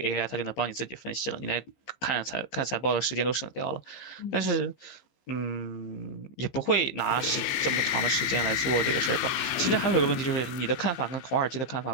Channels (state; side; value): late; right; 15 ms